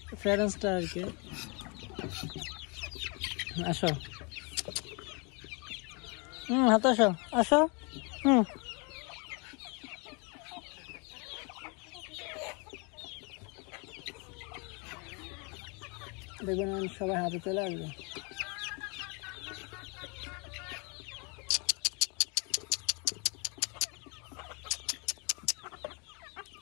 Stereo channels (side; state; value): right; quieter; 32.7 dB